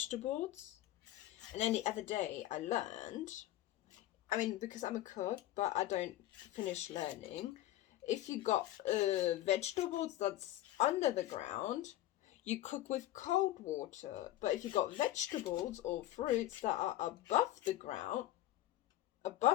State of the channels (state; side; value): quieter; right; 14.5 dB